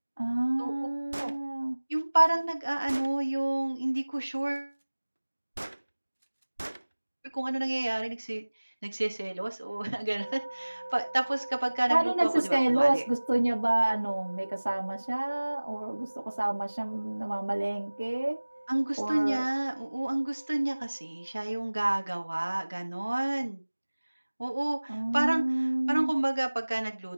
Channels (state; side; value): inverted; both; correlation -1.00